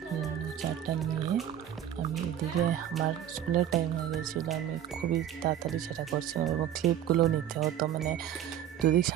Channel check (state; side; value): quieter; left; 10.6 dB